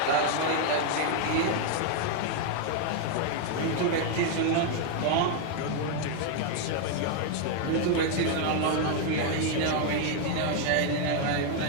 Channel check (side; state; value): both; different; correlation 0.01